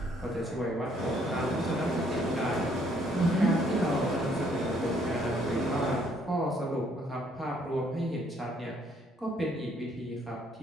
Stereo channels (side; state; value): both; normal; correlation 0.66